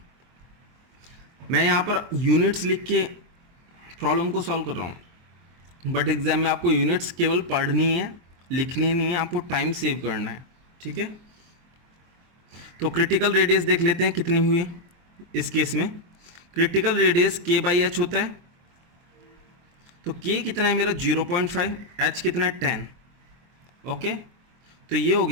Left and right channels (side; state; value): left; late; 23 ms